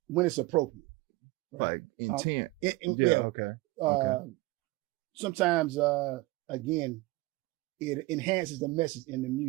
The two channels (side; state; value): left; quieter; 21.2 dB